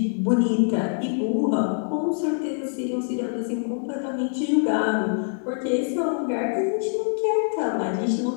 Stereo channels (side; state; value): right; silent; 59 dB below the other